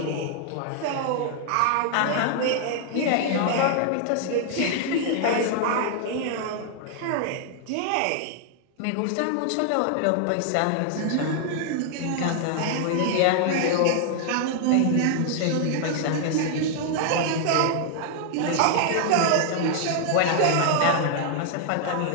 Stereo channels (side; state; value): both; different; correlation 0.00